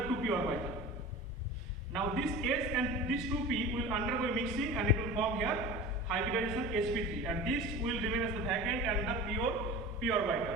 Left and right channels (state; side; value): normal; both; correlation 0.34